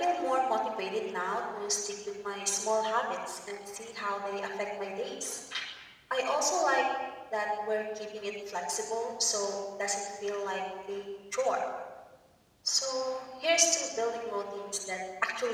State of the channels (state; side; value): identical; both; correlation 1.00